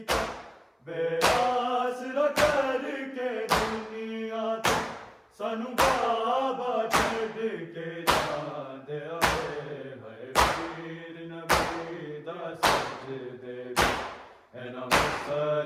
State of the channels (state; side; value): identical; both; correlation 1.00